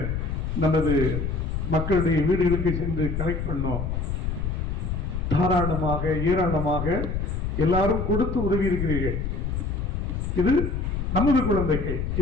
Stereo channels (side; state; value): left; noise; rumble, 2 dB below the sound